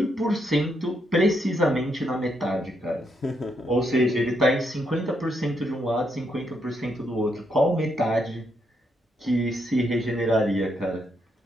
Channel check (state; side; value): normal; both; correlation 0.78